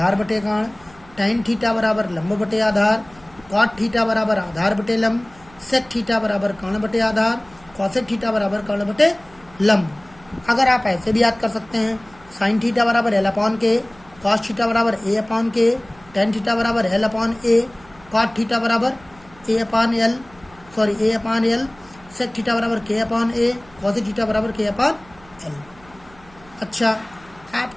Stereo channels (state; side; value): noise; right; hum, 26 dB below the sound